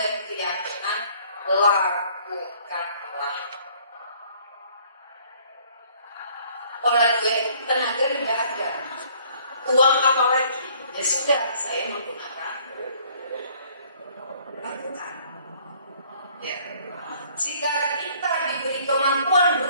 keyakinan lakukanlah. Orang gue tenaga tidak ada, uang apa lagi? Ya sudah, saya menggunakan lakukan. Ya. Jika kita diberi kemampuan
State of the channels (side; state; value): both; inverted; correlation -0.58